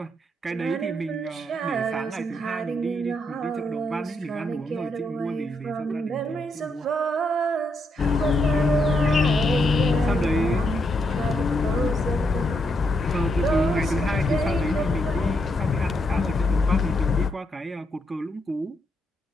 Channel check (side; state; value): both; normal; correlation 0.78